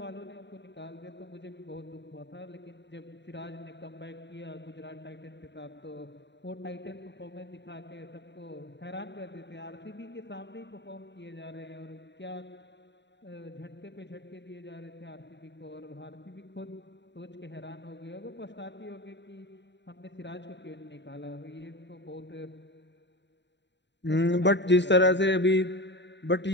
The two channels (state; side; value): late; right; 0.52 ms